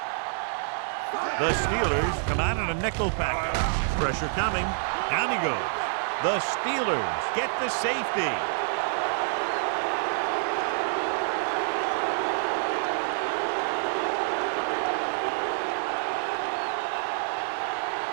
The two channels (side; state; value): left; silent; 60 dB below the other